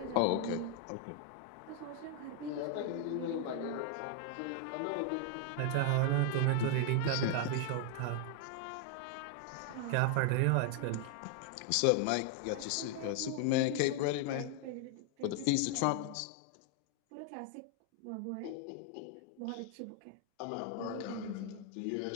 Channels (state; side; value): different; both; correlation 0.00